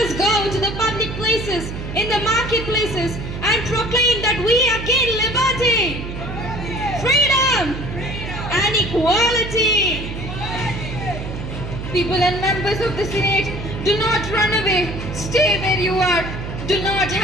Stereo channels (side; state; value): right; noise; hum, 7 dB below the sound